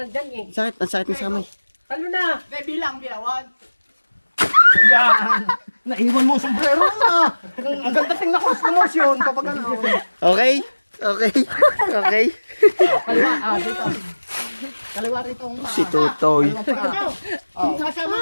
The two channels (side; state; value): both; inverted; correlation -1.00